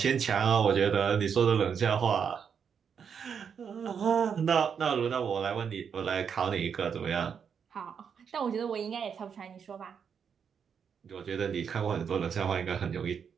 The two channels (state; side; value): quieter; left; 7.0 dB